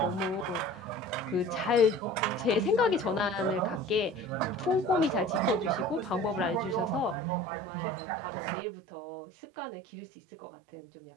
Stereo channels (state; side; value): drops out; left; at 7.2 s